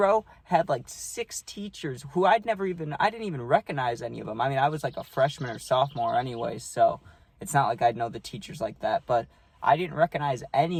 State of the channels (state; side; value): identical; both; correlation 1.00